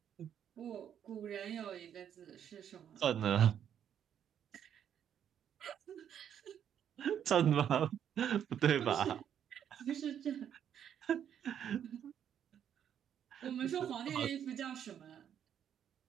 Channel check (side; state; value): left; quieter; 9.2 dB